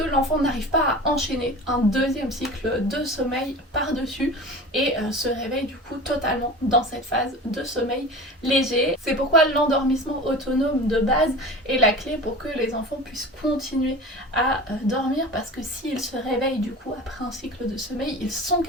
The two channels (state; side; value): normal; both; correlation 0.34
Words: l'enfant n'arrive pas à enchaîner un deuxième cycle de sommeil par-dessus et se réveille du coup totalement dans cette phase de sommeil léger. C'est pourquoi l'endormissement autonome de base est la clé pour que les enfants puissent continuer à dormir, parce que s'ils se réveillent du coup après un cycle de sommeil, ils sont